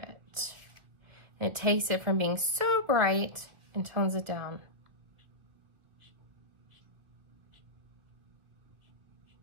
And it takes it from being so bright and tones it down.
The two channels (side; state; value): left; late; 2.2 ms